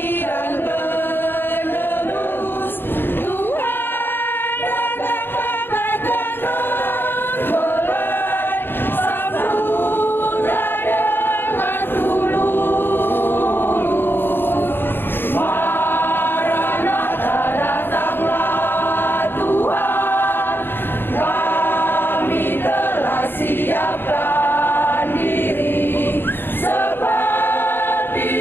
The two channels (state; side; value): late; right; 0.10 ms